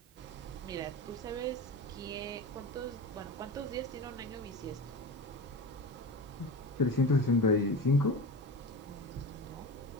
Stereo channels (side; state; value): both; normal; correlation 0.27